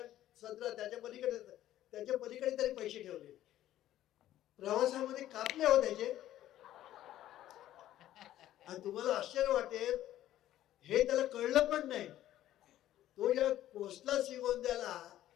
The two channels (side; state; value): right; quieter; 13.1 dB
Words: सदरा त्याच्या पलीकडे तरी पैसे ठेवले. प्रवासामध्ये कापले हो त्याचे. आणि तुम्हाला आश्चर्य वाटेल, हे त्याला कळलं पण नाही. तो जेव्हा पोचला श्रीगोंद्याला